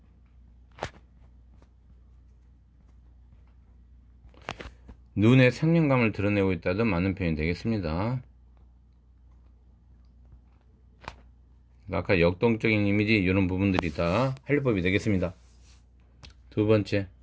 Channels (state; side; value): identical; both; correlation 1.00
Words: 눈의 생명감을 드러내고 있다도 맞는 표현이 되겠습니다. 아까 역동적인 이미지 이런 부분들이 다 활용법이 되겠습니다. 두 번째,